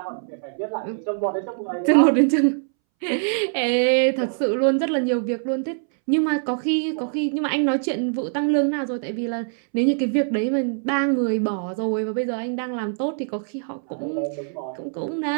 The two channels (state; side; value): silent; left; 63 dB below the other